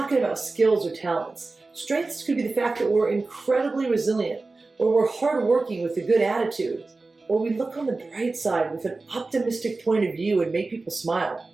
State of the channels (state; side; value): quieter; left; 3.6 dB